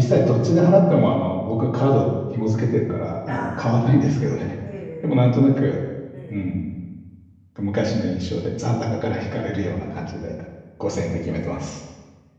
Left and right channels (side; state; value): both; identical; correlation 1.00